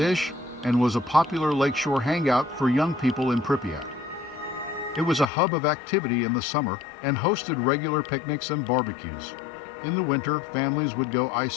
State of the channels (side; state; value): right; drops out; at 5.3 s